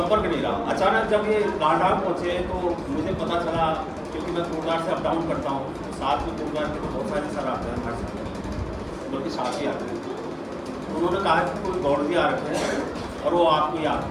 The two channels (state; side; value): identical; both; correlation 1.00